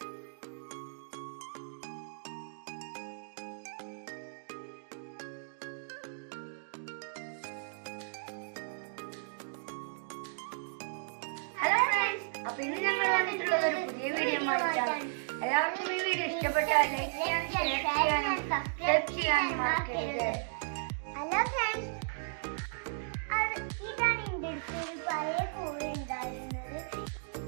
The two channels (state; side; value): silent; left; digital silence